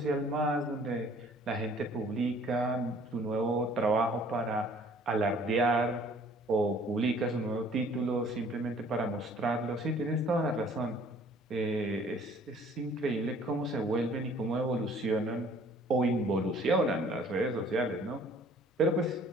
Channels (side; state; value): both; normal; correlation 0.55